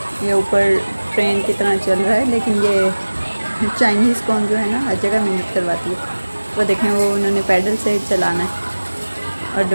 ये ऊपर ट्रेन की तरह चल रहा है, लेकिन ये चाइनीज़ कौन जो है ना हर जगह मेहनत करवाती है। वो देखें, वो उन्होंने पैडल से चलाना है। और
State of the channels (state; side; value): inverted; both; correlation -1.00